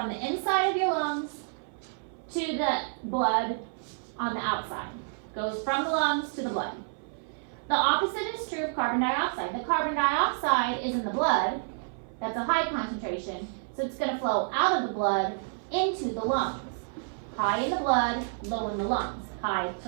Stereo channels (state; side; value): silent; left; 58 dB below the other